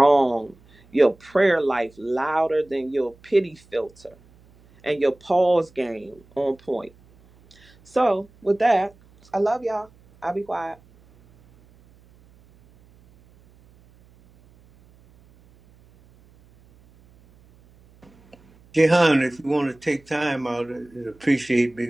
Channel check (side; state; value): right; noise; hum, 29 dB below the sound